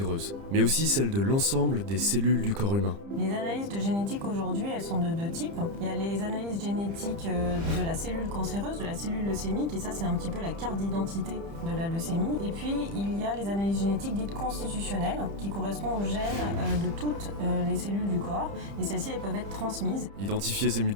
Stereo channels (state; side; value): late; left; 30 ms